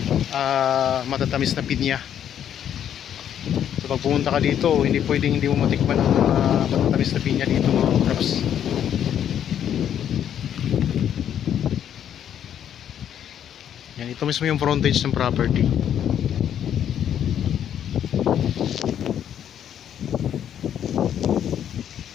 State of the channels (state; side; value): quieter; right; 9.7 dB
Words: matatamis na pinya. So pag pumunta ka dito, hindi pwedeng hindi mo matikman ang matatamis na pinya dito mga kaprops. Yan, ito mismo yung frontage ng property.